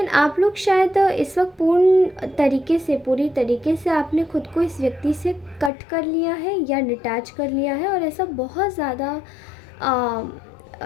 आप लोग शायद इस वक्त पूरी तरीके से आपने खुद को इस व्यक्ति से कट कर लिया है या डिटैच कर लिया है, और ऐसा बहुत ज़्यादा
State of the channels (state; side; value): drops out; right; at 5.7 s